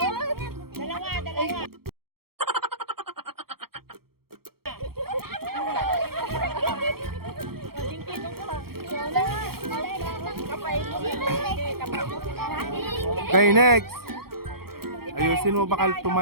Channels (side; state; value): left; late; 0.94 ms